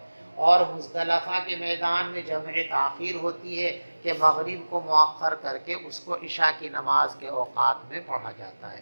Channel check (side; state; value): both; inverted; correlation -1.00